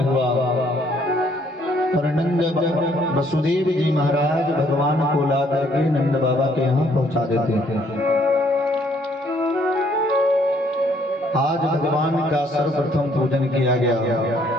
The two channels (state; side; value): normal; both; correlation 0.65